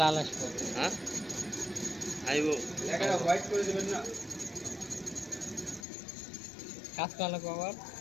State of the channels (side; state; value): right; drops out; at 5.9 s